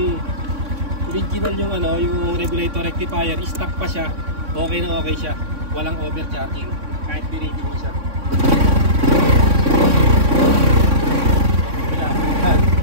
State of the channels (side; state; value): left; late; 3.6 ms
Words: original yung ano, yung regulator rectifier, stock pa siya. Okay na okay siya. Walang overcharging. Kahit birating mo siya.